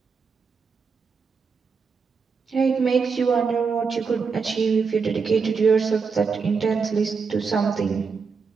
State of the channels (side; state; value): left; quieter; 5.3 dB